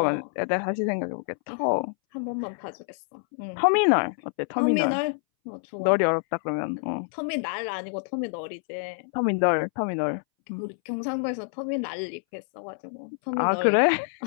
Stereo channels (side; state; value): right; silent; 60 dB below the other